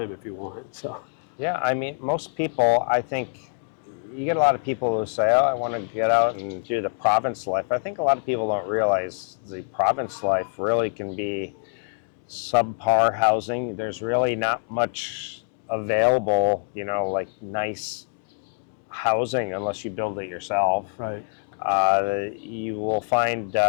if you want. So. Yeah, I mean, most people, I think, you get a lot of people who say, oh, I want to get out and do the province life. I think a lot of people don't realize the province life really can be subpar housing. There's really not much available, you know, like nice housing unless you build it yourself. Right. You will find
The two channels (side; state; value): right; silent; digital silence